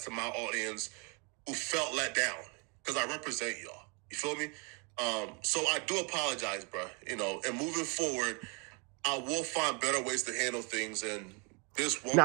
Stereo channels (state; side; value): quieter; left; 33.0 dB